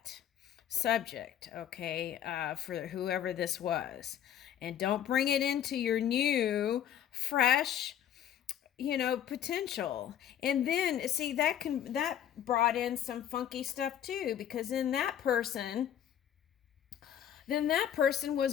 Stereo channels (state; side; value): quieter; right; 10.2 dB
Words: subject, okay, for whoever this was. And don't bring it into your new, fresh, potential. And then see that brought in some funky stuff too, because then that person